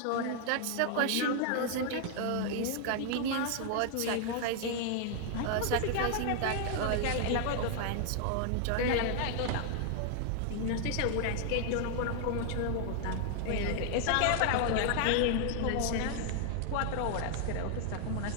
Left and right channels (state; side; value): different; both; correlation 0.00